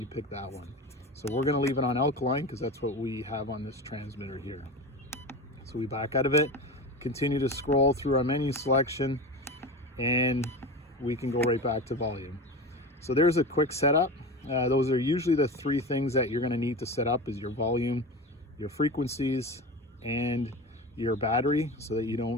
pick that one. So we're going to leave it on alkaline because that's what we have on this transmitter here. So we back out of it, continue to scroll through our menu selection, and we can go right back to volume. So there's a quick setup. Those are usually the 3 things that you're going to need to set up: is your volume, your frequencies, and your battery, so that you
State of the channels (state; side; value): normal; both; correlation 0.28